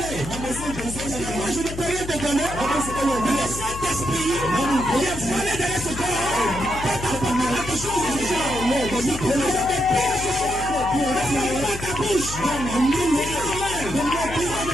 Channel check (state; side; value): noise; left; hum, 9 dB below the sound